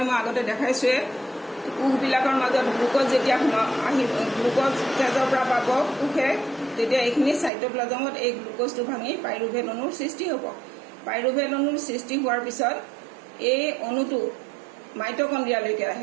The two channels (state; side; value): drops out; left; at 7.5 s